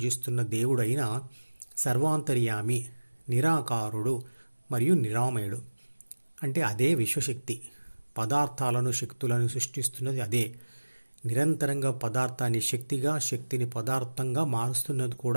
దేవుడైనా సర్వాంతర్యామి, నిరాకారుడు మరియు నిరామయుడు. అంటే అదే విశ్వశక్తి. పదార్థాలను, శక్తులను సృష్టిస్తున్నది అదే. నిరంతరంగా పదార్థాన్ని శక్తిగా, శక్తిని పదార్థంగా మారుస్తున్నది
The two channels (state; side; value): inverted; both; correlation -1.00